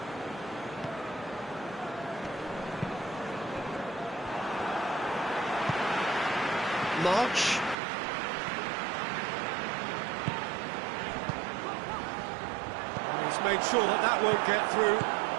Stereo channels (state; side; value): drops out; left; at 7.8 s